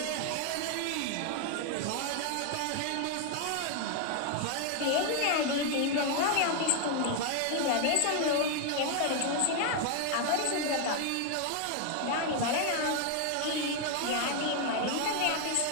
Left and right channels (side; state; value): both; different; correlation 0.00